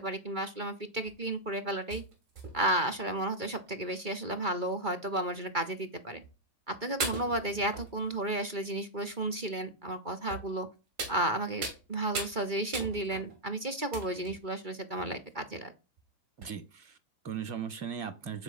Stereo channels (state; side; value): late; left; 2.3 ms